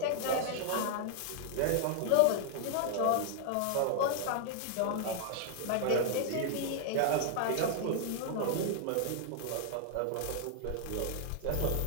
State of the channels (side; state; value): both; different; correlation -0.01